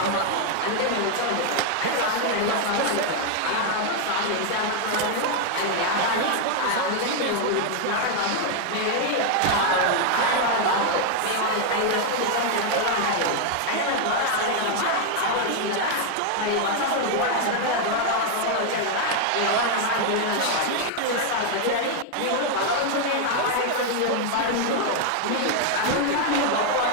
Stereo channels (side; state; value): both; different; correlation 0.00